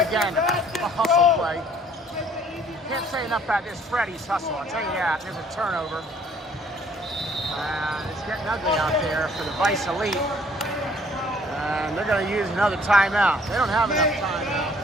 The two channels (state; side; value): normal; both; correlation 0.59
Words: A hustle play. Can't say enough about this Freddy's hustle. I'll tell you that. There's a turnover. And it's getting ugly out there for the Vice Elite. And they're going to use another timeout. They don't have enough timeout